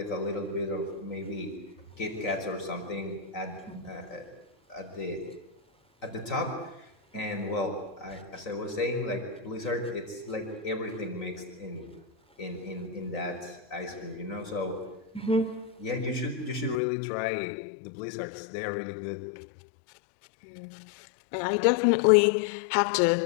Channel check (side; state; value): right; drops out; at 16.8 s